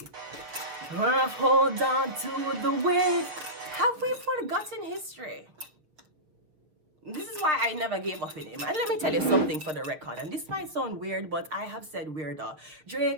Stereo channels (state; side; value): late; left; 6.7 ms